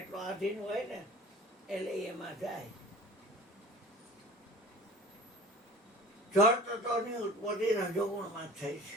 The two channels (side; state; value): both; normal; correlation 0.42